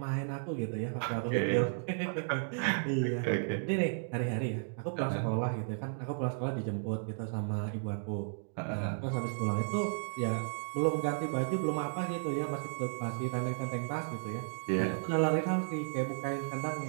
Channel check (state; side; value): silent; left; digital silence